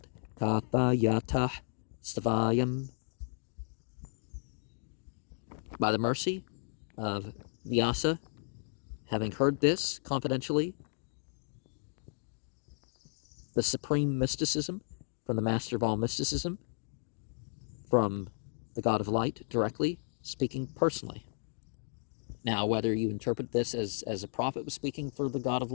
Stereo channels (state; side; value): silent; right; digital silence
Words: kathayatah stavayam. By the mercy of Vyasa, having heard this confidentially, the supreme mysticism from the master of all mysticism, from the God of light directly, speaking personally. Now, whether you interpret this as a prophet was speaking for the God of